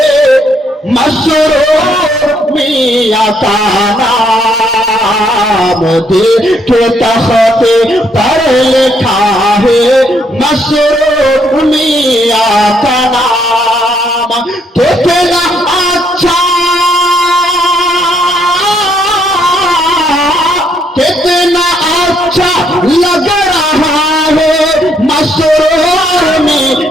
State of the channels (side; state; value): both; normal; correlation 0.71